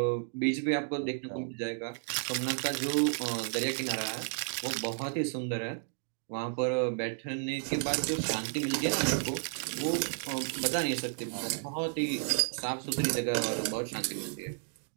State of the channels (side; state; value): left; silent; digital silence